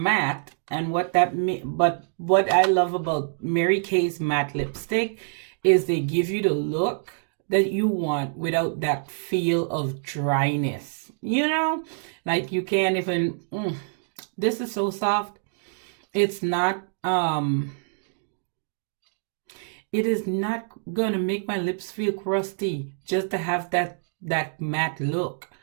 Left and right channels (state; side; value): silent; left; digital silence